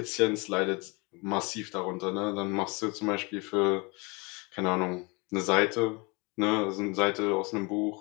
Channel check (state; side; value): quieter; right; 28.4 dB